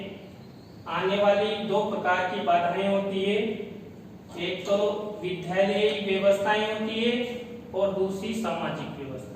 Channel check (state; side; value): identical; both; correlation 1.00